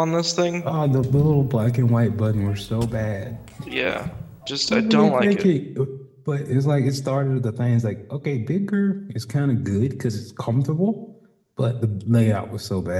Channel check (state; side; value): identical; both; correlation 1.00